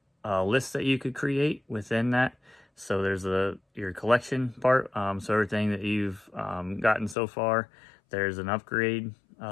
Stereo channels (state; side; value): drops out; right; at 7.2 s